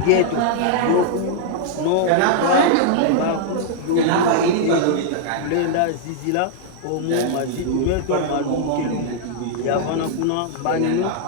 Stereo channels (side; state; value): both; different; correlation -0.01